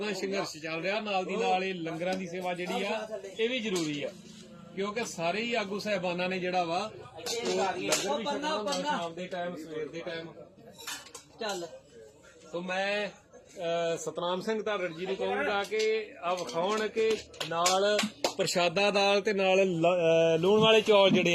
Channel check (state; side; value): identical; both; correlation 1.00